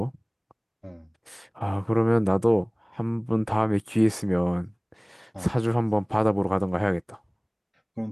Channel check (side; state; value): both; identical; correlation 1.00